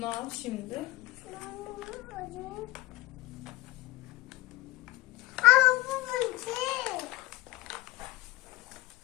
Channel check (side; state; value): right; quieter; 19.3 dB